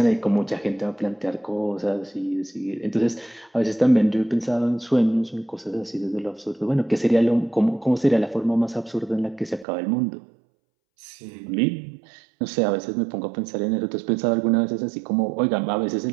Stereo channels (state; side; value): drops out; left; at 9.7 s